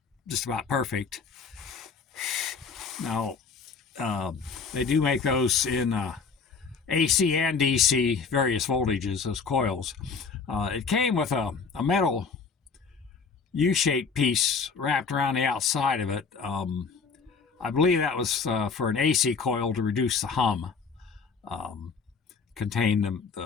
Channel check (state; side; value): quieter; right; 5.2 dB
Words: just about perfect. Now, they do make those in AC and DC, various voltages, those coils. It came with a metal U-shaped piece wrapped around the outside of it. I believe that was for an AC coil to reduce the hum. Contain